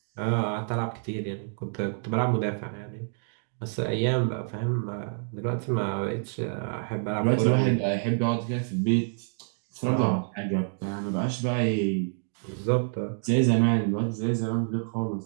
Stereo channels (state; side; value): silent; left; digital silence